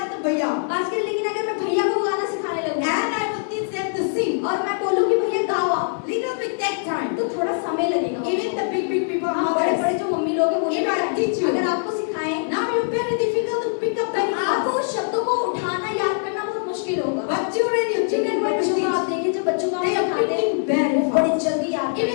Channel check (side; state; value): right; silent; digital silence